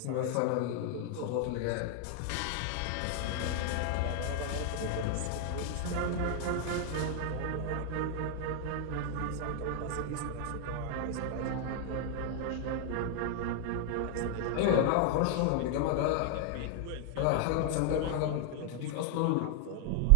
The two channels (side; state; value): both; different; correlation 0.00